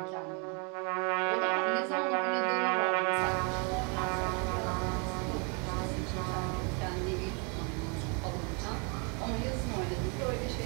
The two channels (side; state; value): left; quieter; 34.9 dB